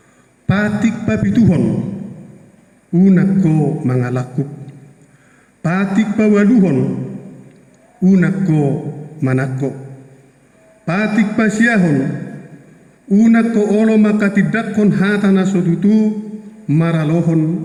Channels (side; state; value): both; identical; correlation 1.00